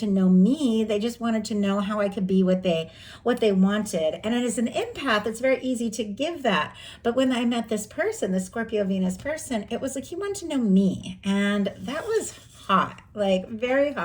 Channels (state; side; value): identical; both; correlation 1.00